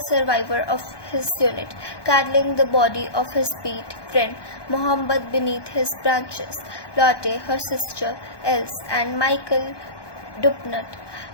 of his unit, cuddling the body of his beat friend Mohammed beneath his branches. Lotte, her sister Else, and Michael Dupnut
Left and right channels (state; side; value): late; right; 1.2 ms